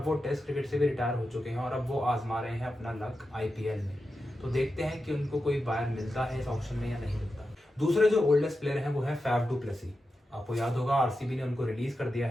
वो टेस्ट क्रिकेट से भी रिटायर हो चुके हैं और अब वो आजमा रहे हैं अपना लक आईपीएल में। तो देखते हैं कि उनको कोई बायर मिलता है इस ऑक्शन में या नहीं मिलता। दूसरे जो ओल्डेस्ट प्लेयर हैं वो है फैफ डू प्लेसी। आपको याद होगा आरसीबी ने उनको रिलीज कर दिया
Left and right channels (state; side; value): normal; both; correlation 0.90